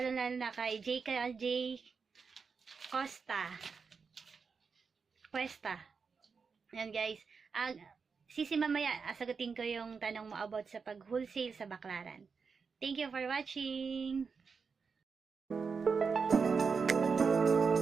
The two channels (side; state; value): left; quieter; 5.3 dB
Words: na kay JKJ Cuesta. Yan guys. Sisi mamaya, sagutin ko yung tanong mo about sa pag-wholesale sa Baclaran. Thank you for watching!